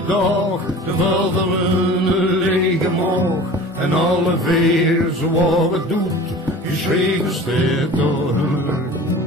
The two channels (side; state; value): both; normal; correlation 0.40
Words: dagen, de vulderen een lege maag. En alle veer zoals het doet, geschreven staat door hun rug.